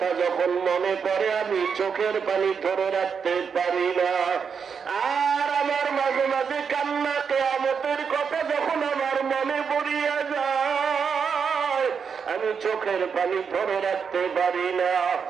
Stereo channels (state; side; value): quieter; left; 6.3 dB